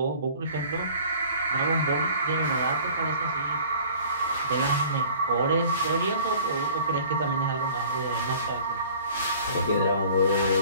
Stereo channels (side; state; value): both; inverted; correlation -0.49